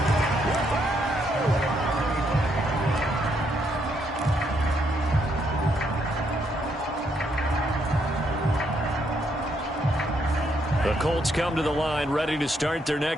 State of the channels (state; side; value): normal; both; correlation 0.74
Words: The Colts come to the line ready to start their